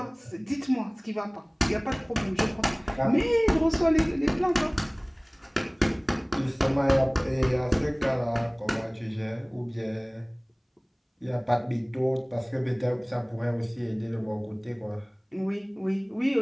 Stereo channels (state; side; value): identical; both; correlation 1.00